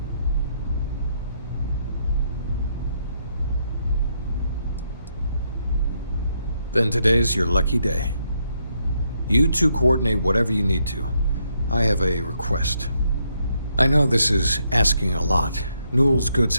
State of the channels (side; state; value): both; inverted; correlation -0.76